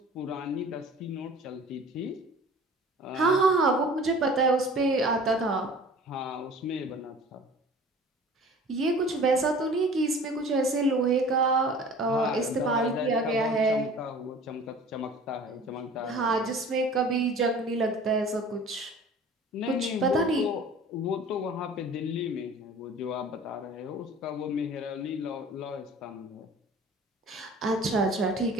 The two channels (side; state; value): both; normal; correlation 0.45